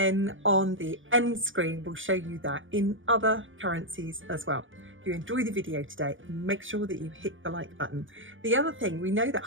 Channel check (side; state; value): left; late; 0.57 ms